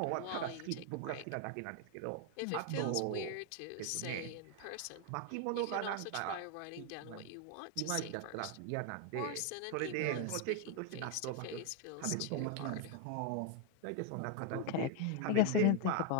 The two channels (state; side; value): different; both; correlation 0.01